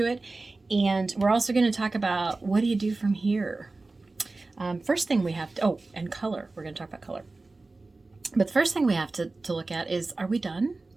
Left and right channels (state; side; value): quieter; left; 3.4 dB